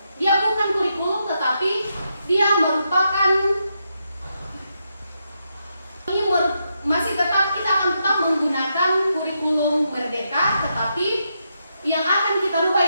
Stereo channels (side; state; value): both; inverted; correlation -0.82